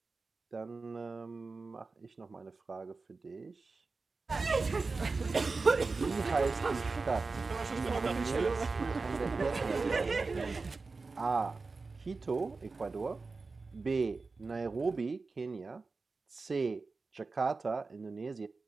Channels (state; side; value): quieter; left; 4.0 dB